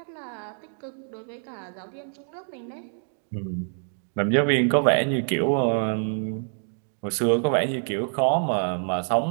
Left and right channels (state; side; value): silent; left; 58 dB below the other